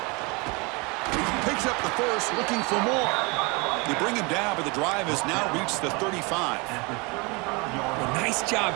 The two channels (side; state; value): left; quieter; 28.5 dB